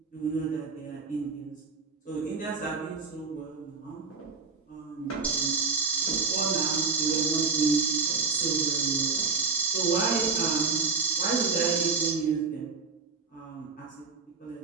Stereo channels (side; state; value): left; quieter; 4.8 dB